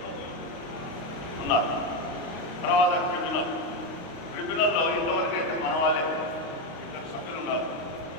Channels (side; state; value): right; late; 35 ms